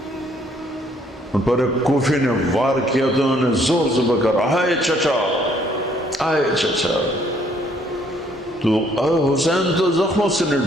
ان پر ایک کوفی نے وار کیا تو انہوں نے زور سے بکر، آئے چچا، آئے چچا. تو حسین تو زخموں سے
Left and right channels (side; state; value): both; normal; correlation 0.65